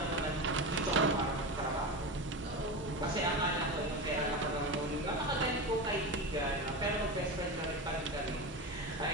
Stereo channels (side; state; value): both; normal; correlation 0.22